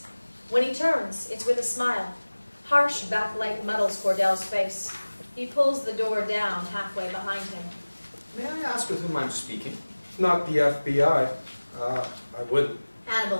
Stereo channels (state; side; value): inverted; both; correlation -1.00